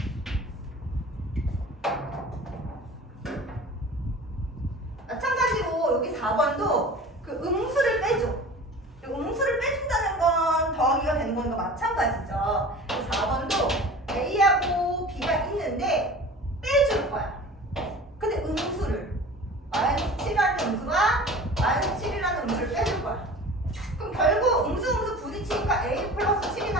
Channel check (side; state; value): both; normal; correlation 0.39